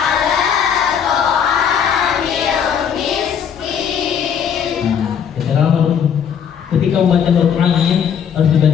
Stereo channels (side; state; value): right; quieter; 7.9 dB